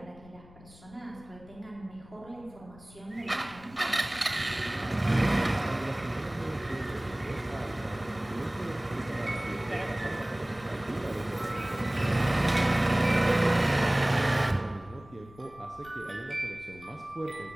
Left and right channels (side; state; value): left; noise; rumble, 22 dB below the sound